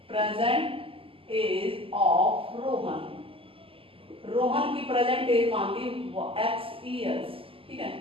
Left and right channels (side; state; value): left; late; 0.26 ms